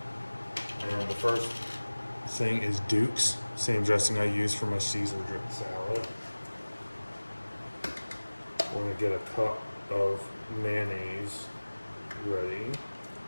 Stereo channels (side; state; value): both; inverted; correlation -1.00